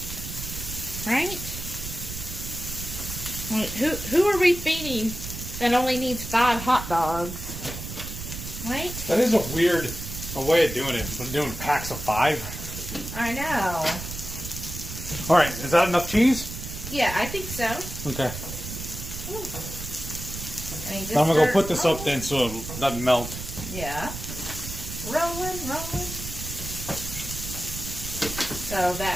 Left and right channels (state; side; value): noise; right; rumble, 9 dB below the sound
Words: Right? Who are we feeding that only needs 5 hot dogs? Right? That is a weird way of doing it. But doing packs of 5. I know. All right, is that enough cheese? Yeah, I think so. Okay. I'm going to go put this up then so it doesn't melt. Yeah. Rolling. So So